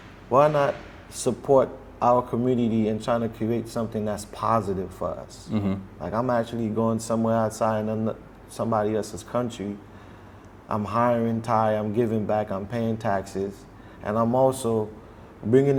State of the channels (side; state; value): both; identical; correlation 1.00